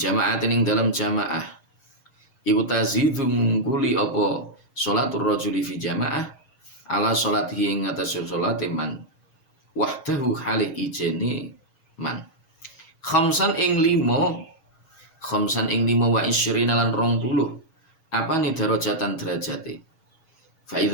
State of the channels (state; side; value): late; right; 6.3 ms